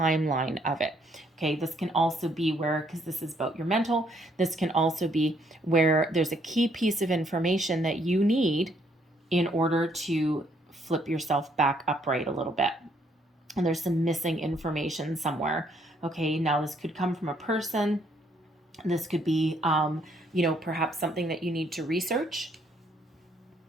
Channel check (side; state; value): both; normal; correlation 0.69